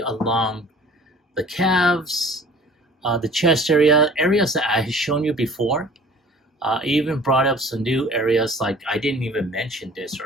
the calves, the chest area, areas that I had shown you before. Even brought up some new areas, like I didn't even mention this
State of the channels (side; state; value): both; normal; correlation 0.48